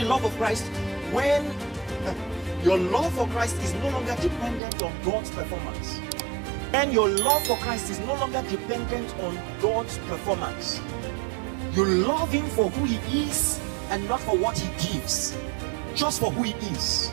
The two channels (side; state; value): left; drops out; at 4.6 s